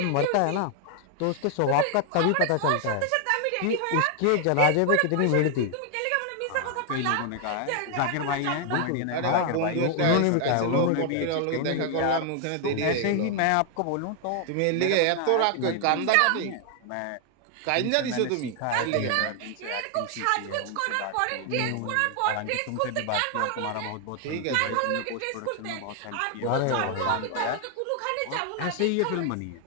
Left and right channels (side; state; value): both; different; correlation 0.00